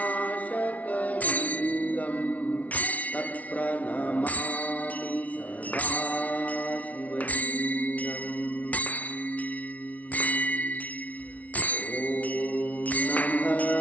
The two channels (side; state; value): right; late; 0.069 ms